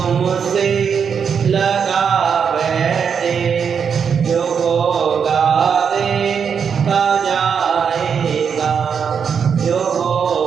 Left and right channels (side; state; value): left; quieter; 6.8 dB